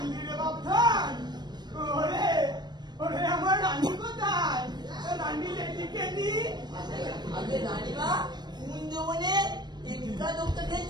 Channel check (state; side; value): late; left; 0.21 ms